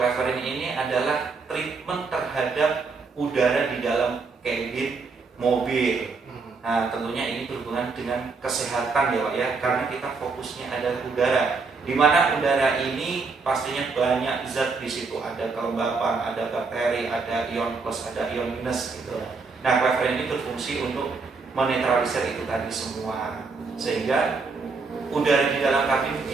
ini adalah treatment terhadap udara di dalam kabin mobil. Nah, tentunya ini berhubungan dengan kesehatan ya Pak ya, karena kita fokusnya adalah udara, di mana udara ini pastinya banyak zat di situ, ada kelembapan, ada bakteri, ada ion plus, ada ion minus gitu. Nah, cleverin ini berfungsi untuk menetralisir itu tadi semua, sehingga udara di dalam kabin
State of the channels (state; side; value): quieter; left; 4.4 dB